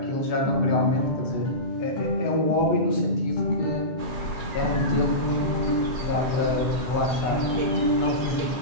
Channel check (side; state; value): right; late; 7.3 ms